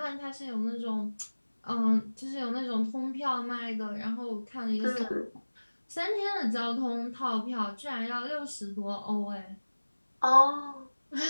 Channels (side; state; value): both; inverted; correlation -1.00